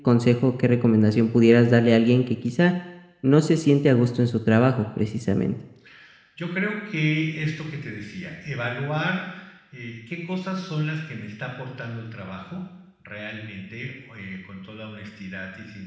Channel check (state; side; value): identical; both; correlation 1.00